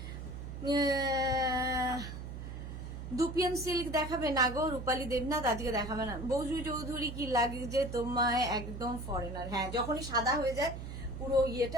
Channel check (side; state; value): right; noise; hum, 8 dB below the sound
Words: Dupion silk দেখাবে না গো রূপালী দেবনাথ, আজকে দেখাবে না। বৌজু চৌধুরী কি লাগে যে তোমায় একদম ফরেনার। হ্যাঁ যখনই সাদা হয়ে যায় পুরো